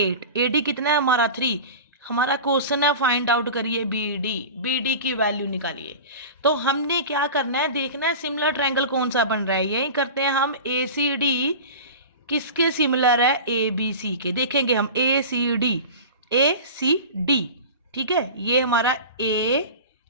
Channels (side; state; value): both; inverted; correlation -0.33